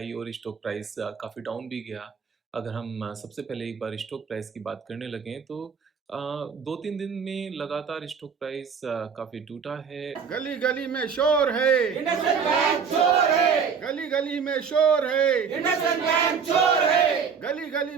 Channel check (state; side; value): quieter; left; 6.3 dB